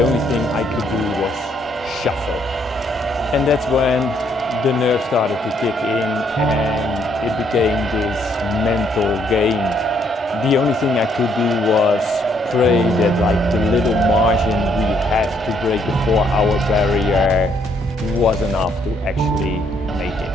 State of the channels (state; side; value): normal; both; correlation 0.70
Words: only thing I could do was shuffle. And that's when the nerves started to kick in and it became this mental game. The only thing I could do was pray that the little margin we had to break the 4-hour barrier was enough to actually make it.